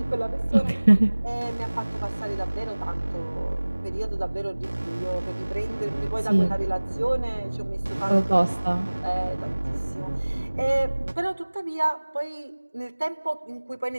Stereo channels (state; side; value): inverted; both; correlation -1.00